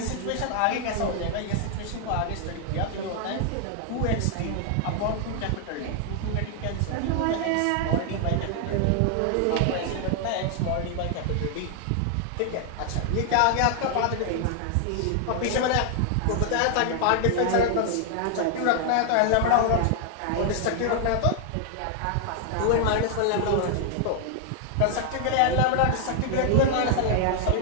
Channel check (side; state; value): both; different; correlation 0.00